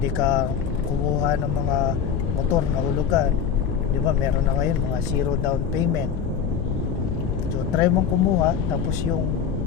ka kumuha ng mga motor na hulugan, di ba, meron na ngayon mga zero down payment. So try mong kumuha, tapos yung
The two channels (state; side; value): quieter; right; 7.6 dB